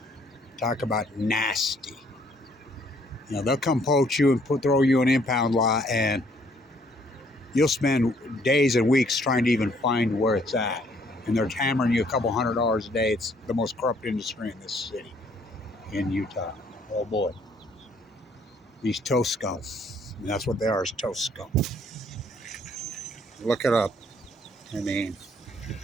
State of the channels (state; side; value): normal; both; correlation 0.64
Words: Talk about nasty. You know, they'll come poach you and throw you an impound lot, and you'll spend days and weeks trying to even find where it's at. And they're hammering you a couple $100 a day. It's the most corrupt industry in this city, in Utah. Oh boy. These toast scum. And that's what they are, is toast scum. Look it up. I mean,